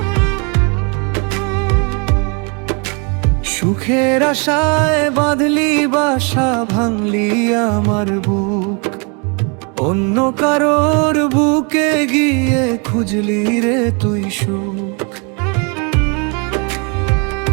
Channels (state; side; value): quieter; left; 34.3 dB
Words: সুখের আশায় বাঁধলি বাসা, ভাঙলি আমার বুক। অন্য কারোর বুকে গিয়ে খুঁজলি রে তুই সুখ।